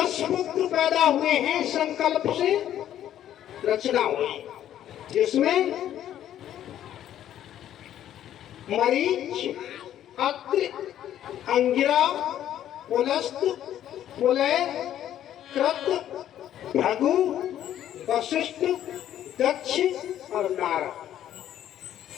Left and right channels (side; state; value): right; quieter; 11.3 dB